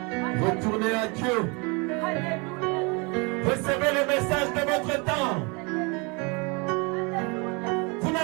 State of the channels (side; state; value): left; quieter; 30.4 dB